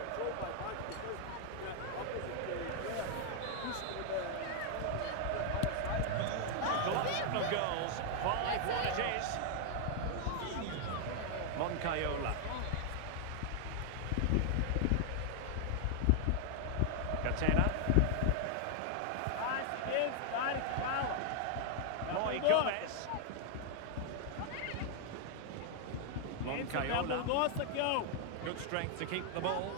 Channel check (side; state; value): both; different; correlation 0.00